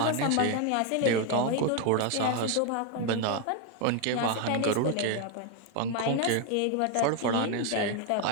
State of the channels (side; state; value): both; different; correlation 0.01